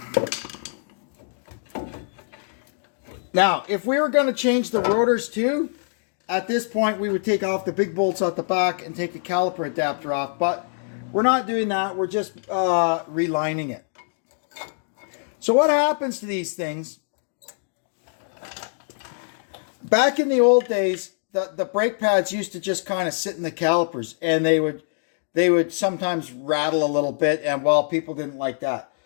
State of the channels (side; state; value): right; silent; digital silence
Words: Now, if we were going to change the rotors too, at this point we would take off the big bolts out the back and take the caliper adapter off, but we're not doing that. We're just relining it. So what happens to these things? Back in the old days, the brake pads used to just kind of sit in the calipers, and they would sometimes rattle a little bit, and well, people didn't like that.